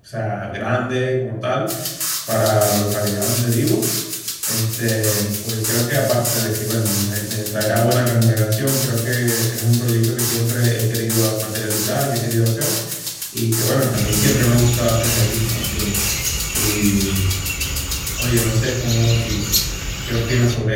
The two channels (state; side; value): identical; both; correlation 1.00